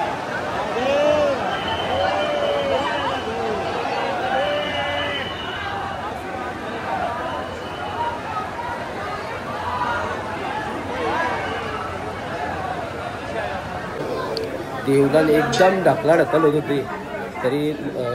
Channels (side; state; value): both; identical; correlation 1.00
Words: देवलाल एकदम ढकल होत होती तरी